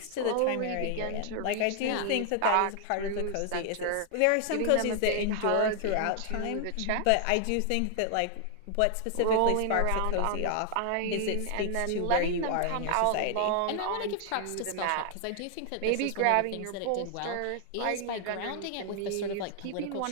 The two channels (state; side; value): different; both; correlation 0.00